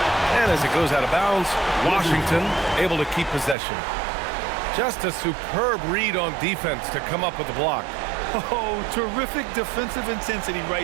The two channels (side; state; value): left; drops out; at 3.6 s